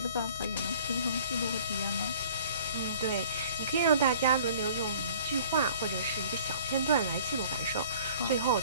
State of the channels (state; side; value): inverted; both; correlation -0.50